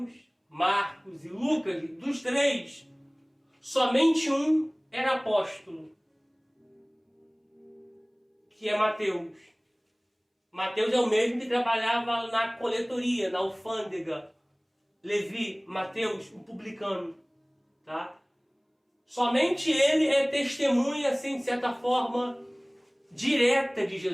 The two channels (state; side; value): identical; both; correlation 1.00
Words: Marcos e Lucas, dos 3, somente um era apóstolo, que é Mateus. Mateus é o mesmo que trabalhava na coletoria, na alfândega. Levi, Mateus, o publicano. Tá? Somente ele é testemunha, assim, de certa forma, direta de